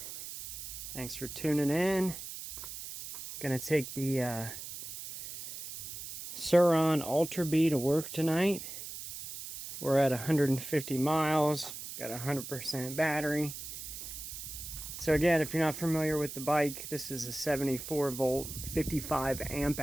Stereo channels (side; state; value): right; noise; hiss, 9 dB below the sound